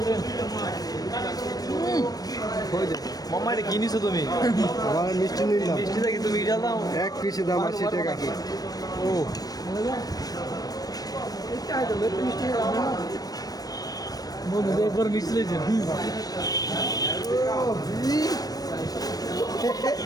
মাম্মা এটা কিনিছো তুমি আমার মিষ্টি নিলাম মিষ্টি দেখি তুমি এটা দাও এক পিসে দাম 80 টাকা ও বন্ধু একবার মিষ্টি লেগেছে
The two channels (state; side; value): late; right; 0.18 ms